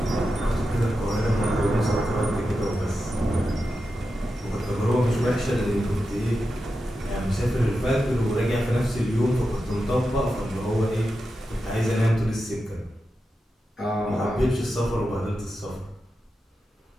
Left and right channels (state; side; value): normal; both; correlation 0.90